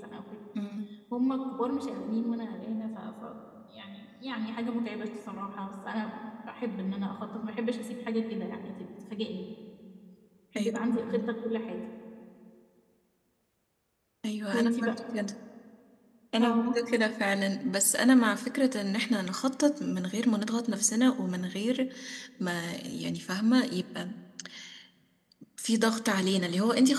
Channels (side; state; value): both; identical; correlation 1.00